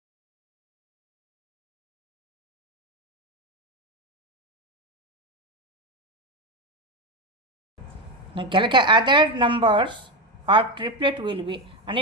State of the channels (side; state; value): both; normal; correlation 0.13